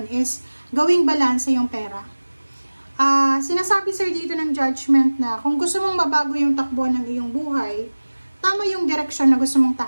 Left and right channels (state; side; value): inverted; both; correlation -1.00